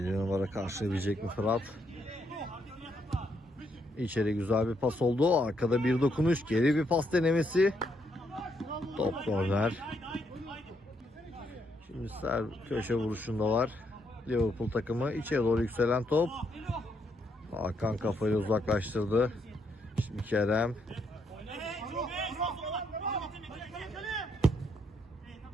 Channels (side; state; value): both; normal; correlation 0.76